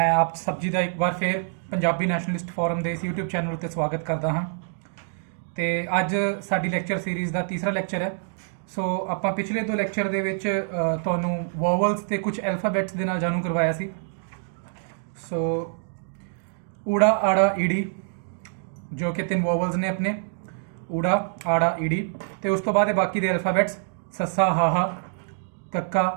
ਆਪ ਸਭ ਜੀ ਦਾ ਇੱਕ ਵਾਰ ਫੇਰ ਪੰਜਾਬੀ ਨੈਸ਼ਨਲਿਸਟ ਫੋਰਮ ਦੇ ਇਸ YouTube ਚੈਨਲ ਉੱਤੇ ਸਵਾਗਤ ਕਰਦਾ ਹਾਂ। ਤੇ ਅੱਜ ਸਾਡੀ ਲੈਕਚਰ ਸੀਰੀਜ਼ ਦਾ ਤੀਸਰਾ ਲੈਕਚਰ ਹੈ। ਸੋ ਆਪਾਂ ਪਿਛਲੇ ਦੋ ਲੈਕਚਰ ਦੇ ਵਿੱਚ ਤੁਹਾਨੂੰ ਵੋਵਲਸ ਤੇ ਕੁਝ ਐਲਫਾਬੈਟਸ ਦੇ ਨਾਲ ਜਾਣੂ ਕਰਵਾਇਆ ਸੀ। ਸੋ ਊੜਾ ਆੜਾ ਈੜੀ ਜੋ ਕਿ ਤਿੰਨ ਵੋਵਲਸ ਨੇ ਆਪਣੇ ਊੜਾ ਆੜਾ ਈੜੀ, ਤੇ ਉਸ ਤੋਂ ਬਾਅਦ ਇਹ ਬਾਕੀ ਦੇ ਐਲਫਾਬੈਟਸ ਸੱਸਾ ਹਾਹਾ ਕੱਕਾ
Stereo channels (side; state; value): left; silent; digital silence